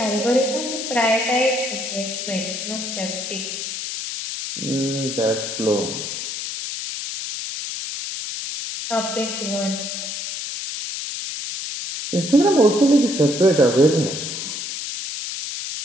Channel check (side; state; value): left; noise; hiss, 5 dB below the sound